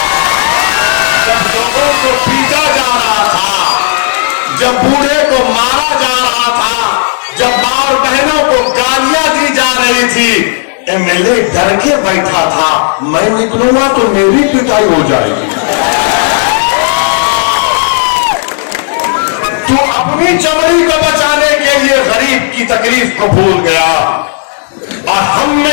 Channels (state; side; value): silent; right; digital silence